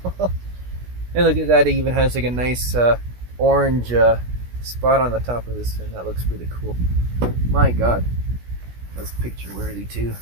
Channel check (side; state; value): left; late; 16 ms